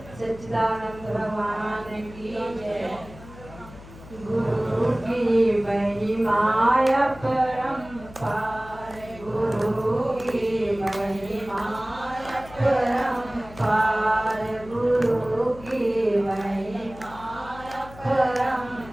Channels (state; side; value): noise; left; hum, 18 dB below the sound